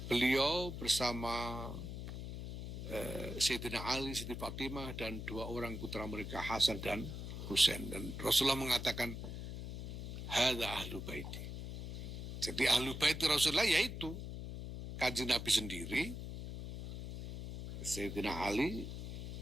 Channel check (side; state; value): left; noise; hum, 7 dB below the sound